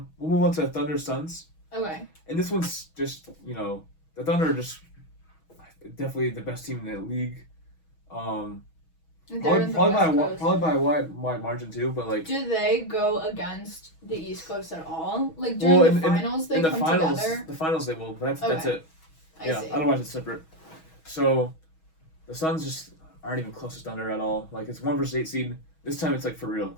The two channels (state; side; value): late; right; 6.2 ms